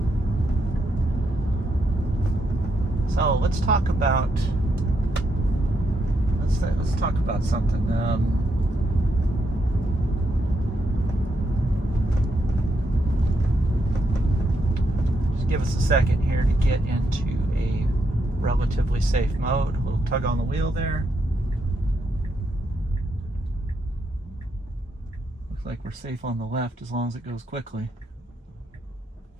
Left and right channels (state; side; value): normal; both; correlation 0.80